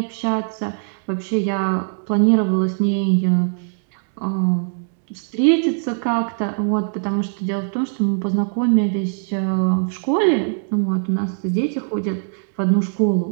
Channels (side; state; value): left; silent; digital silence